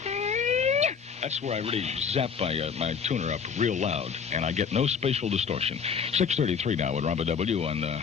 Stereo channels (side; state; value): right; quieter; 6.5 dB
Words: That's where I really zap my tuner up real loud, and I get no spatial distortion. 6:33 now with Robert W. on